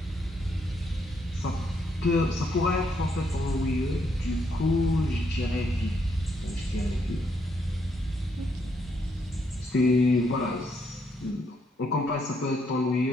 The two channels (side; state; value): both; normal; correlation 0.75